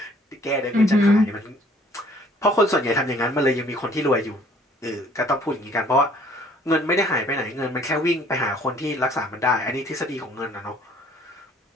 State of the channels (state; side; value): normal; both; correlation 0.58